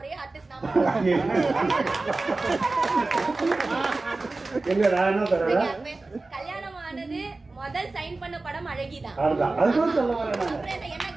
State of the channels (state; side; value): quieter; left; 3.4 dB